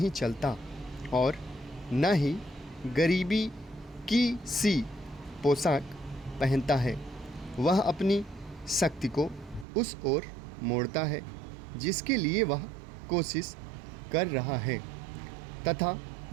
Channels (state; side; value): drops out; left; at 9.7 s